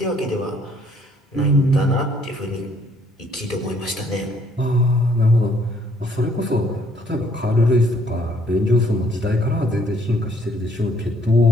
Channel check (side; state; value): both; normal; correlation 0.64